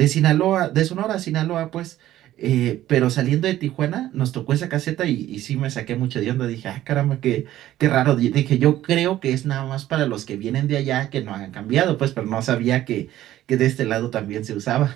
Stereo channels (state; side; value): quieter; left; 13.7 dB